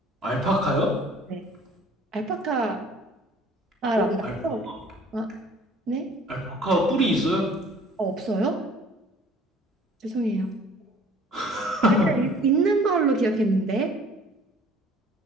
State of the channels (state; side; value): normal; both; correlation 0.52